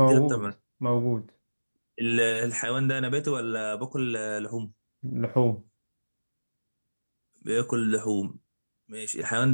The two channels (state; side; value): inverted; both; correlation -1.00